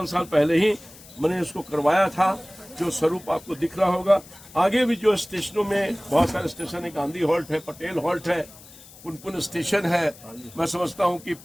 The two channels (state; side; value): noise; left; hiss, 21 dB below the sound